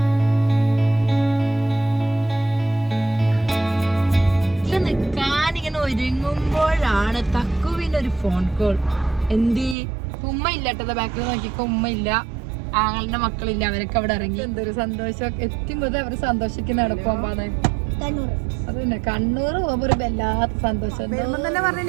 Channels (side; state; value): left; drops out; at 9.8 s